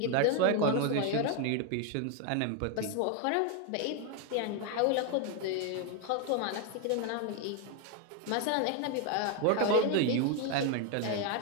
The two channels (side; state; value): both; different; correlation 0.01